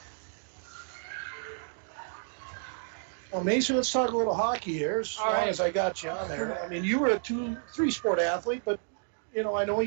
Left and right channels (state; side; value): silent; left; digital silence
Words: Well, Mason, let's talk a little hockey here, as All long right. as I got you on there. I mean, you were a 3-sport athlete, but, you know, I know